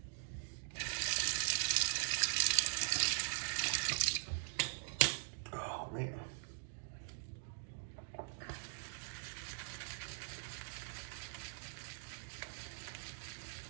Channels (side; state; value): left; silent; digital silence